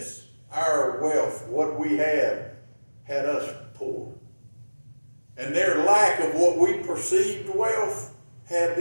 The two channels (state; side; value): inverted; both; correlation -1.00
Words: our wealth, what we had us poor. And their lack of what we perceived wealth had